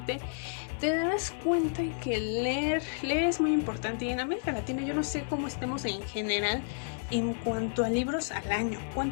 te darás cuenta que leer es muy importante. Y en América Latina yo no sé cómo estemos en general en cuanto a libros al año.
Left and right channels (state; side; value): silent; right; 57 dB below the other